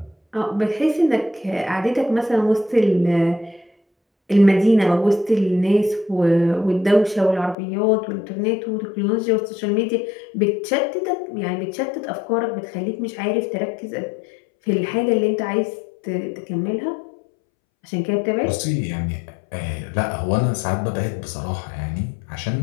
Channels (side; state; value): right; drops out; at 7.6 s